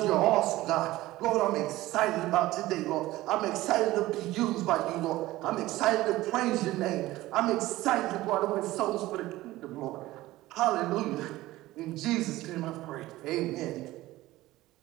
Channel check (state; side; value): quieter; left; 17.2 dB